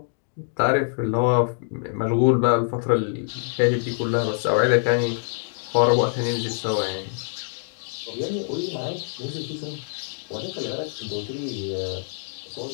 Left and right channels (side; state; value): right; silent; digital silence